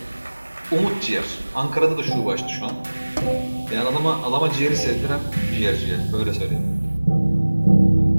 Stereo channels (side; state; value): both; inverted; correlation -1.00